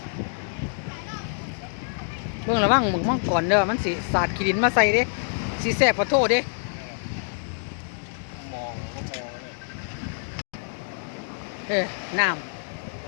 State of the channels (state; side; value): silent; right; digital silence